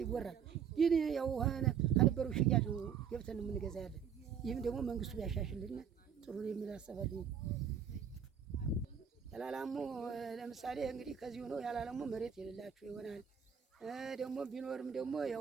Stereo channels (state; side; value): quieter; left; 7.6 dB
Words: ይወራል። ግን ያው ከነበረው ሽያጭ ገብተን የምንገዛ ያለን። ይህም ደግሞ መንግስቱ ቢያሻሽልና ጥሩ የሚል አሰባለሁ። ያላላሙ ለምሳሌ እንግዲህ ከዚህ ሆኖ ያላላሙ መሬት የሌላችሁ ይሆናል። ደግሞ ቢኖርም ደግሞ